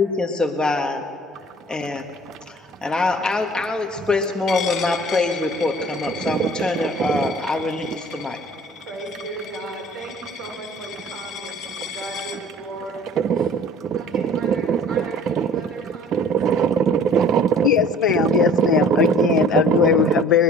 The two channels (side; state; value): both; normal; correlation 0.48